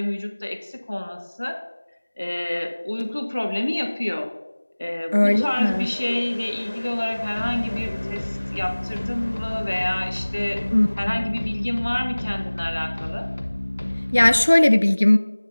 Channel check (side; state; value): both; inverted; correlation -1.00